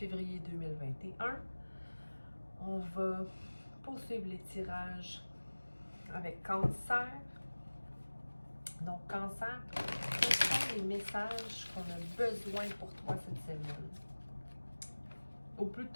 2021. On va poursuivre les tirages avec Cancer. Donc, Cancer, quels sont les messages qu'on a besoin pour toi cette semaine? Ou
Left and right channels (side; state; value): both; inverted; correlation -1.00